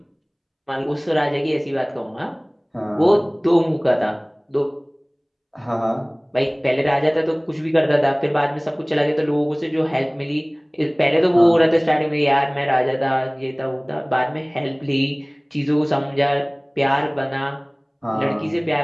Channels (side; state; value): both; identical; correlation 1.00